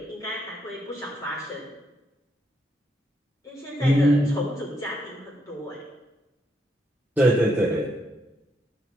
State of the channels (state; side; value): normal; both; correlation 0.77